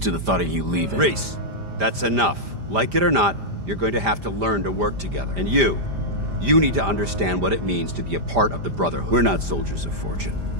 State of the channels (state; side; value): late; left; 5.0 ms